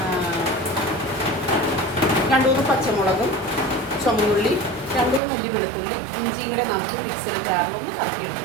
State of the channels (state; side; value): drops out; left; at 5.2 s